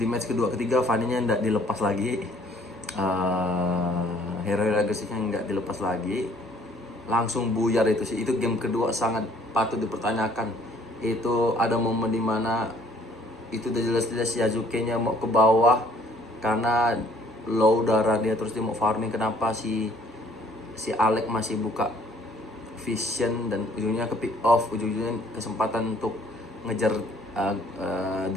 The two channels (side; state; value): both; normal; correlation 0.59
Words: match kedua ketiga Fanny-nya nggak dilepas lagi, hero agresifnya nggak dilepas lagi, langsung buyar itu sih. Itu game kedua sangat patut dipertanyakan. Itu ada momen dimana itu udah jelas-jelas Yasuke-nya mau ke bawah karena low darah dia, terus dia mau farming. Kenapa si Alec masih buka vision, dan ujungnya ke pick off, ujungnya kesempatan untuk ngejar